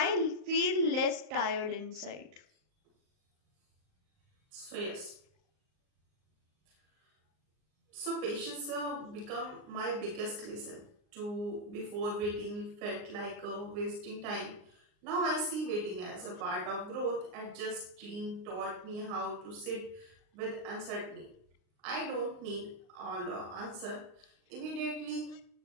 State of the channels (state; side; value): late; left; 39 ms